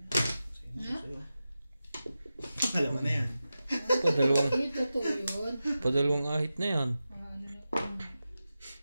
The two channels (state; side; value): inverted; both; correlation -0.93